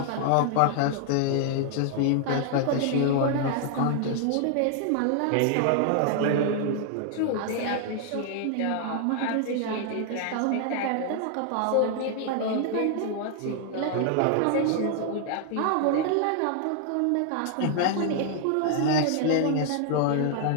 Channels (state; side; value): different; both; correlation 0.00